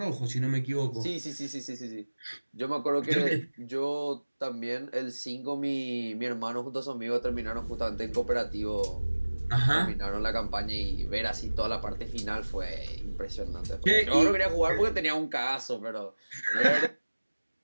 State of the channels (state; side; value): inverted; both; correlation -1.00